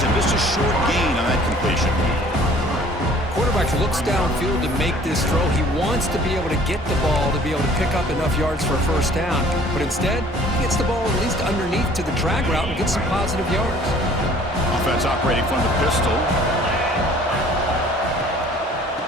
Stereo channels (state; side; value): normal; both; correlation 0.53